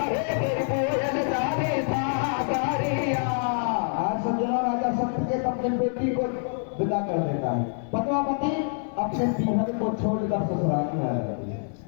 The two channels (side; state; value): right; silent; 59 dB below the other